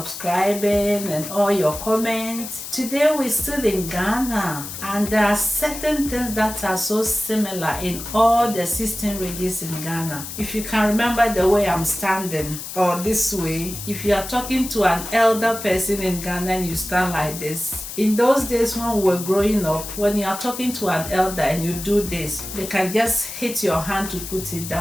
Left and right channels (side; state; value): left; noise; hiss, 9 dB below the sound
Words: and all your comments. Today we're still in Ghana, and there are certain things that are so similar in all the 16 regions in Ghana. If you can remember the way I'm standing, or this way, if you are talking to an elder person in Ghana and you stand like this, in those days when we were growing up, when you are talking to an elder and you do this, they can just hit your hand to put it